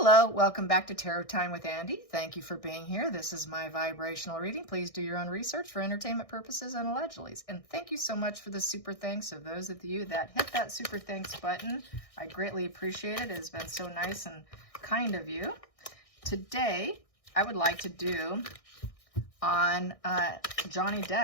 Hello, welcome back to Tarot Time with Andy. Thank you for being here. This is my vibrational reading. Please do your own research for entertainment purposes and allegedly. And thank you so much for the super thanks of those of you that hit that super thanks button. I greatly appreciate it. It has been so nice and kind of you. Today, I would like to do on Johnny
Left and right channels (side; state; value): right; late; 1.6 ms